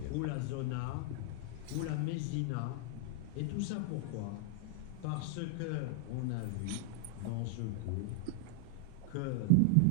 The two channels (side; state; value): both; different; correlation -0.01